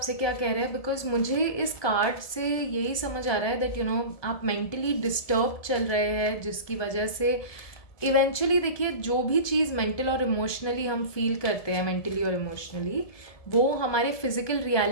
क्या कह रहे हैं, बिकॉज मुझे इस कार्ड से यही समझ आ रहा है दैट यू नो आप मेंटली डिस्टर्ब चल रहे हैं, जिसकी वजह से इवेंचुअली देखिए जो भी चीज़ मेंटल और इमोशनली हम फील करते हैं, मेंटली और इमोशनली, वो हमारे फिजिकल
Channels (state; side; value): late; right; 1.2 ms